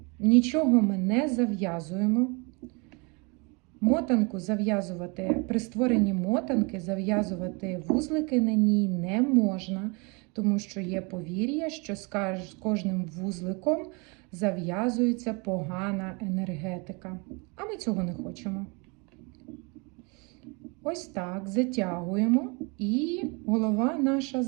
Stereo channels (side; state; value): left; quieter; 30.6 dB